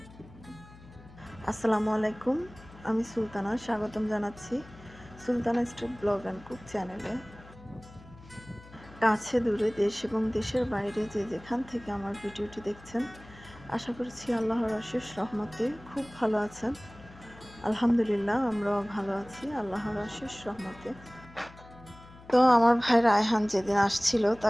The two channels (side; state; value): left; noise; hum, 21 dB below the sound